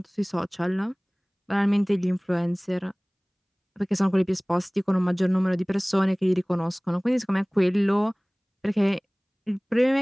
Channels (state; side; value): identical; both; correlation 1.00